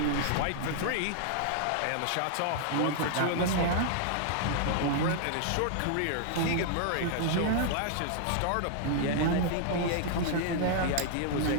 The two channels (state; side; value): different; both; correlation 0.00